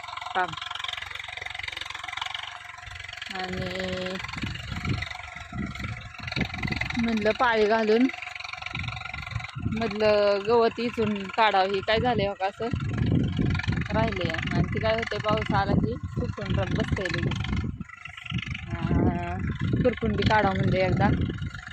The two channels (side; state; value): both; identical; correlation 1.00